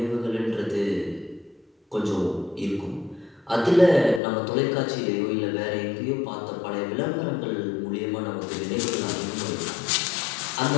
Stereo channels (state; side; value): drops out; right; at 4.2 s